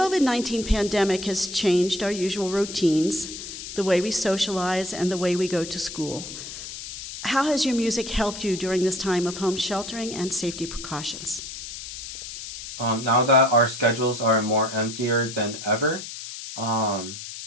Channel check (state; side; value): noise; left; hiss, 10 dB below the sound